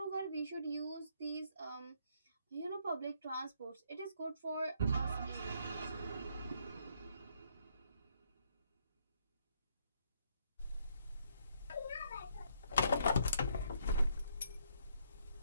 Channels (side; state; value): both; inverted; correlation -0.71